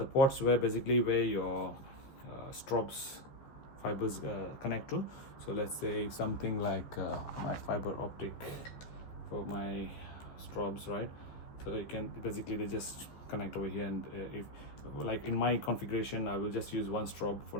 ports where your strobes fibers connect to. So let's say something like my fiber optic for my strobes, right? So you can basically, they just connect over here, and if like in my configuration, I will just use one strobe for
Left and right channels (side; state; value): right; late; 14 ms